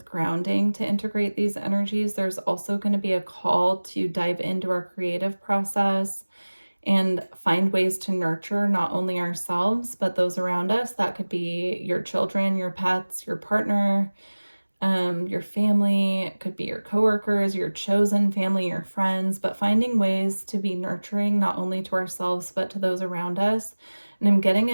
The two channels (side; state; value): both; inverted; correlation -1.00